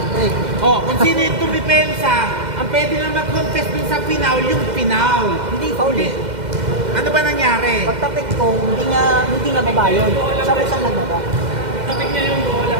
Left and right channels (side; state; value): left; late; 2.1 ms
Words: Oh, kung sino yung tumipensa, ang pwede lang mag-contest dun sa Pinaw, yung Pinaw. Hindi, foul eh. Ano ba nangyari? Pagtapik ko, hindi nga baba yun. Siya ko siyang nagbaba. Tapik niya yung bola.